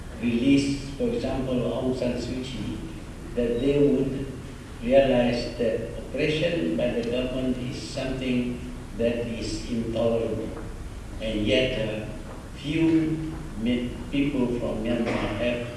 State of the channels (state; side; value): identical; both; correlation 1.00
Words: release, for example, Aung San Suu Kyi, that they would realize that oppression by the government is something that is intolerable. And yet, few people from Myanmar have